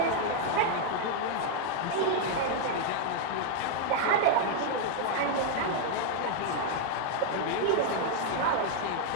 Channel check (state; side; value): different; both; correlation 0.00